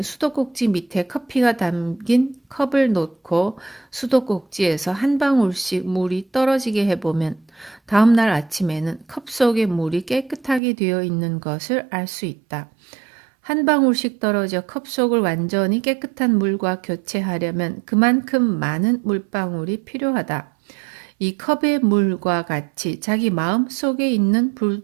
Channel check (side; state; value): left; drops out; at 10.6 s